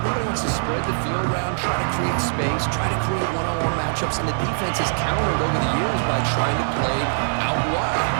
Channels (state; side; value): silent; left; digital silence